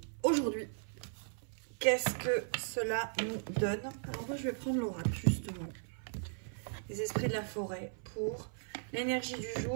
aujourd'hui. Qu'est-ce que cela nous donne? Alors moi, je vais prendre l'oracle, justement. Les esprits de la forêt pour l'énergie du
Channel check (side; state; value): left; silent; 53 dB below the other